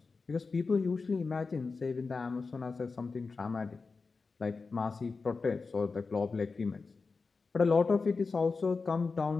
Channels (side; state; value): right; quieter; 4.4 dB